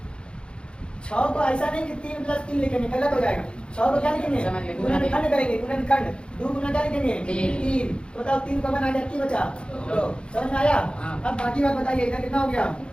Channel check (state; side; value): late; right; 0.055 ms